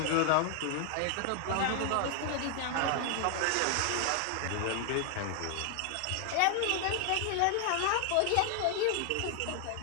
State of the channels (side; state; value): both; different; correlation 0.00